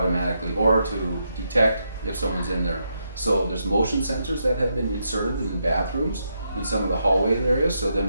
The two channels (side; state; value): both; inverted; correlation -0.81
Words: or to detect if someone's in there. So there's motion sensors that have been inserted in bathrooms in some of the hallway areas, so then